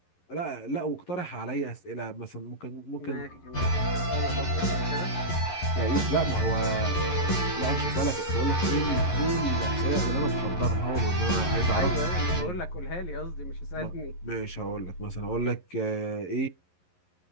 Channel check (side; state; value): right; late; 11 ms